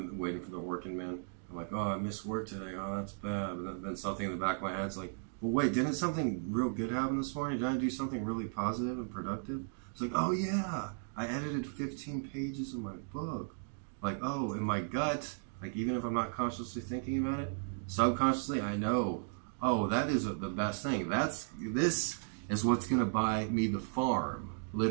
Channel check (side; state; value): left; silent; digital silence